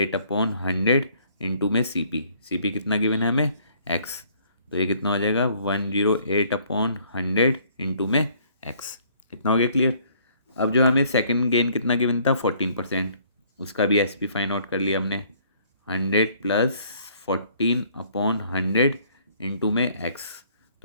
इंटू में सी पी कितना गिवन है हमें एक्स, तो ये कितना हो जाएगा 108/100 इंटू में एक्स। कितना हो गया क्लियर। अब जो हमें सेकंड गेन कितना गिवन था 14%, उसका भी एस पी फाइंड आउट कर लिया हमने, 100 + 14/100 इंटू में एक्स,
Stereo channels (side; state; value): both; inverted; correlation -0.61